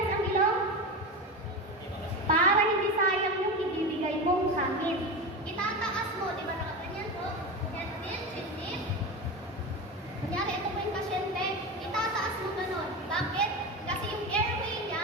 ang ilong? Para hindi sayang yung ibibigay mong hangin. Itataas mo, di ba nakaganyan po? Yan din, chin. Kunyari, ito po yung pasyente, itataas mo ganun. Bakit? Kasi yung airway niya,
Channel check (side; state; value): both; normal; correlation 0.22